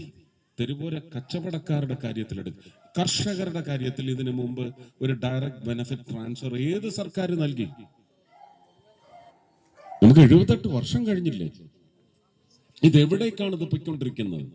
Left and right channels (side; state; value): both; identical; correlation 1.00